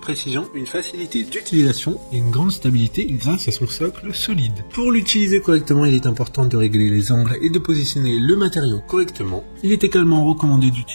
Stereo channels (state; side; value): inverted; both; correlation -1.00